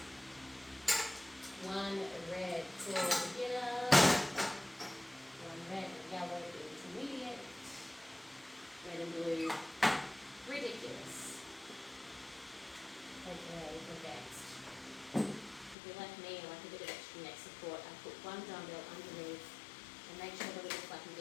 1 red for beginner. 1 red and yellow intermediate. Red and blue ridiculous. Okay, advanced. If you're like me, I like a bit of extra neck support. I put 1 dumbbell underneath and make sure the lift I can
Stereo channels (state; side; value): drops out; right; at 15.8 s